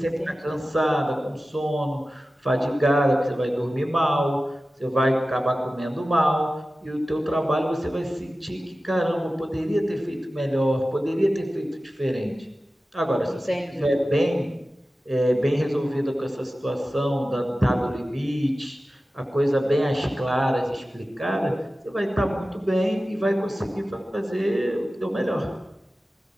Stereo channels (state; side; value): normal; both; correlation 0.95